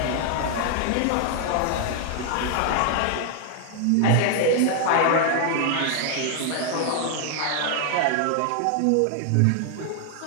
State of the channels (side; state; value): both; different; correlation 0.00